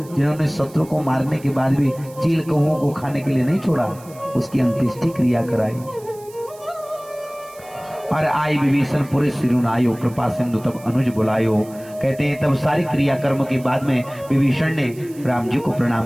जिन्होंने शत्रु को मारने के बाद भी चील कौओं को खाने के लिए नहीं छोड़ा, उसकी अंत्येष्टि क्रिया कराई। और आई विभीषण पुरे सिरुनायो, कृपा सिंधु तब अनुज बुलायो। कहते हैं तब सारी क्रिया कर्म के बाद में विभीषण ने राम जी को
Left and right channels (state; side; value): noise; right; hiss, 22 dB below the sound